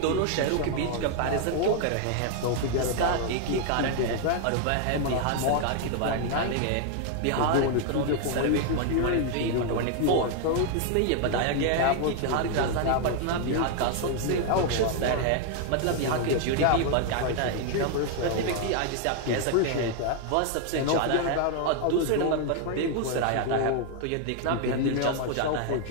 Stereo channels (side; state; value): both; different; correlation 0.00